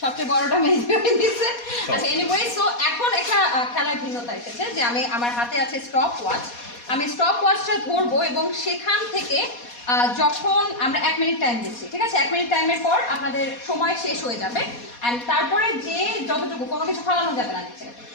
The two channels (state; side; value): late; right; 4.2 ms